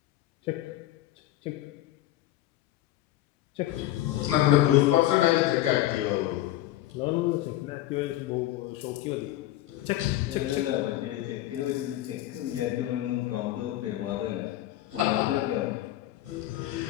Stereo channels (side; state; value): right; quieter; 14.6 dB